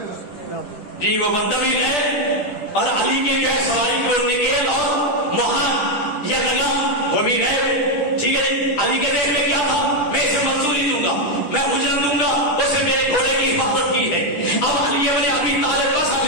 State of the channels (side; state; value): right; late; 10 ms